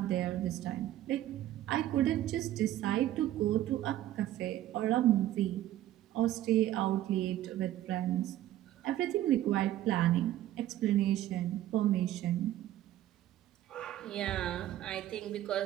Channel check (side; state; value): left; quieter; 13.4 dB